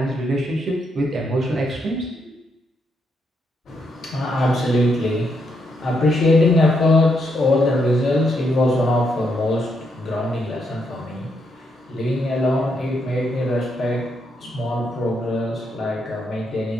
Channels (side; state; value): both; normal; correlation 0.78